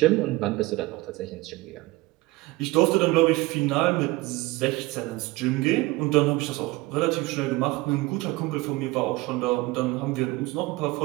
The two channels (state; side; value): quieter; left; 20.8 dB